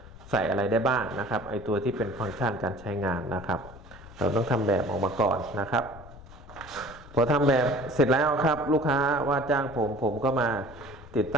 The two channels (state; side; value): noise; left; rumble, 18 dB below the sound